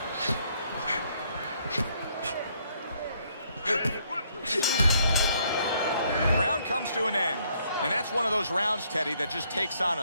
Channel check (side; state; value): both; inverted; correlation -0.69